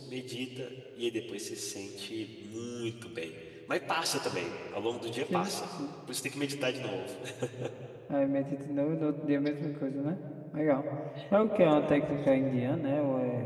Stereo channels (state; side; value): identical; both; correlation 1.00